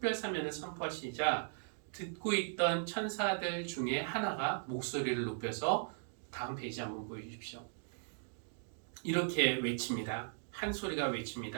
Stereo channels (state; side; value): silent; left; digital silence